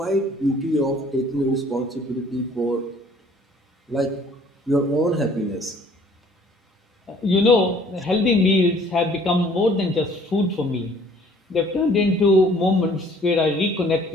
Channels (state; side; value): normal; both; correlation 0.56